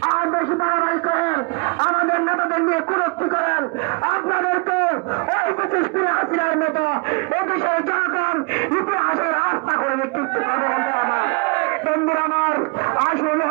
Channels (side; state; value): left; quieter; 31.2 dB